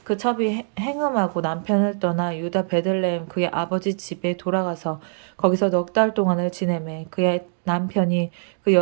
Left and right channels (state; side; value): silent; left; digital silence